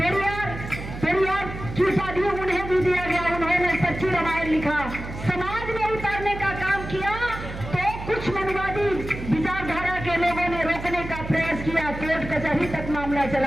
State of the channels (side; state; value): right; noise; hum, 9 dB below the sound